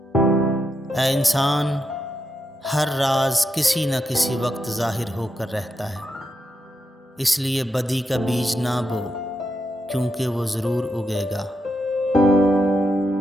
اے انسان، ہر راز کسی نہ کسی وقت ظاہر ہو کر رہتا ہے، اس لیے بدی کا بیج نہ بو کیونکہ وہ ضرور اگے گا۔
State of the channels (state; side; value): normal; both; correlation 0.84